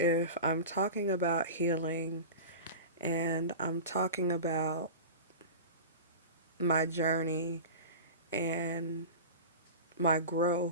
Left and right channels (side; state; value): both; inverted; correlation -0.31